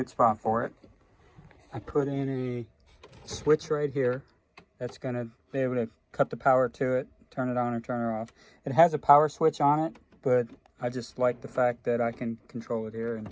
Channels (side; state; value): both; identical; correlation 1.00